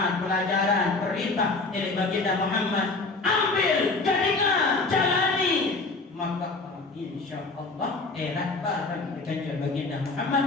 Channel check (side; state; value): right; quieter; 3.6 dB